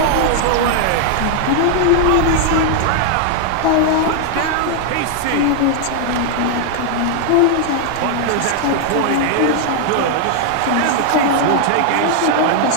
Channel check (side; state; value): both; different; correlation 0.00